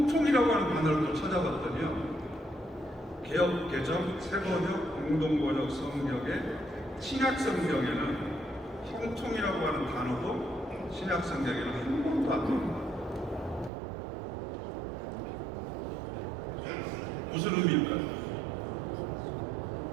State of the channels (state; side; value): drops out; left; at 13.7 s